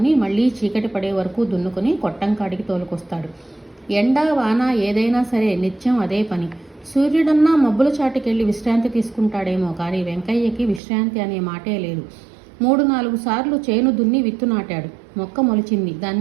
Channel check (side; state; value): left; drops out; at 10.8 s